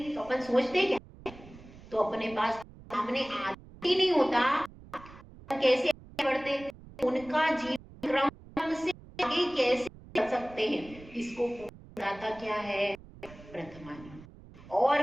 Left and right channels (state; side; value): noise; right; rumble, 19 dB below the sound